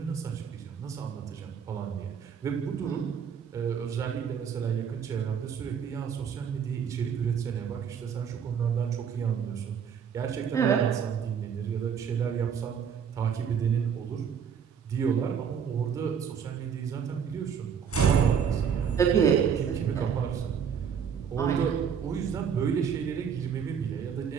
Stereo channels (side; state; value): left; quieter; 7.4 dB